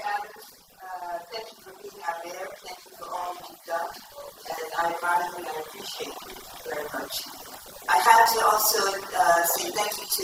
Adams. Thank you for being our mayor. Thank you for all that you've done. And I admire you and I appreciate you very much. I had to also say thank you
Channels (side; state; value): both; identical; correlation 1.00